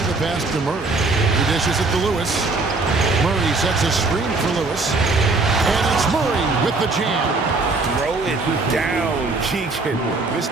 the pass to Murray. He dishes it to Lewis. Murray sets a screen for Lewis. And it's Murray with the jam. Throw it down, Keegan.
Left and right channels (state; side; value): quieter; left; 3.6 dB